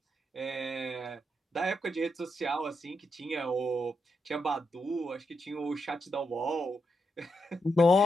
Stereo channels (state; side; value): normal; both; correlation 0.83